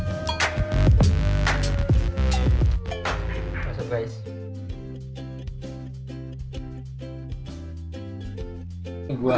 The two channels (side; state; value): both; identical; correlation 1.00